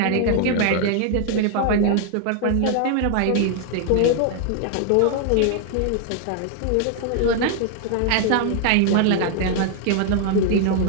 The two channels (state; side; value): different; both; correlation 0.00